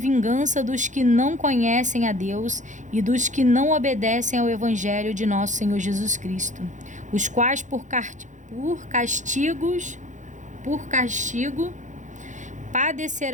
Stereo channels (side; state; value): left; late; 0.36 ms